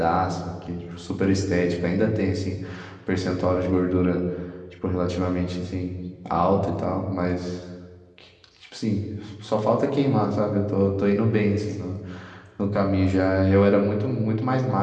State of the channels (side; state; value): both; identical; correlation 1.00